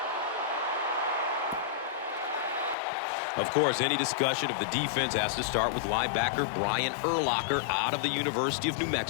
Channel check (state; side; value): drops out; right; at 2.8 s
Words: Of course, any discussion of the defense has to start with linebacker Brian Urlacher out of the University of New